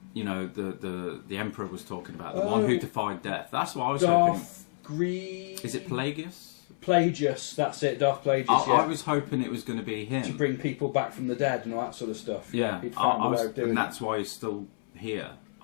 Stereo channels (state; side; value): silent; right; 58 dB below the other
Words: you know, the Emperor was talking about, the one who defied death. That's what I was hoping. Is it Plagueis? Plagueis, that's it, Darth Plagueis. I was hoping it was going to be him. To bring people back from the dead and all that sort of stuff. Yeah, and that's why he's still here.